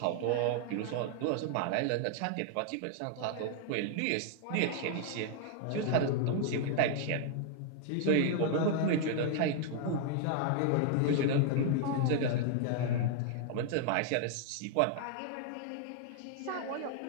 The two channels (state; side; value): different; both; correlation 0.00